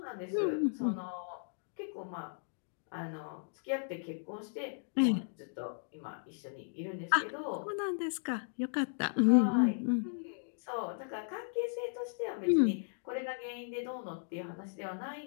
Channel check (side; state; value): right; silent; digital silence